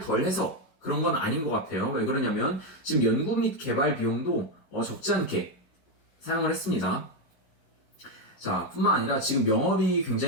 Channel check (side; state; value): right; late; 11 ms